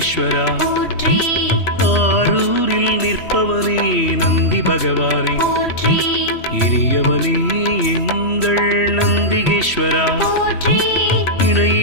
போற்றி ஆரூரில் நிற்பவனே நந்தி பகவானே, போற்றி இனியவனே எங்கள் நந்திகேஸ்வரா, போற்றி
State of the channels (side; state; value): right; late; 3.1 ms